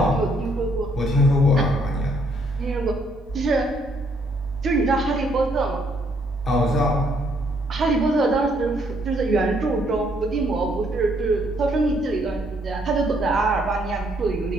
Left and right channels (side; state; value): both; normal; correlation 0.69